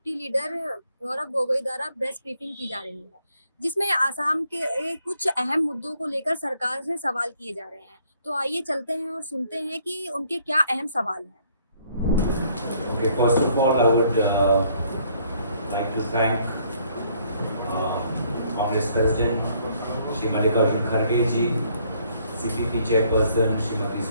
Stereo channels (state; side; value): inverted; both; correlation -0.65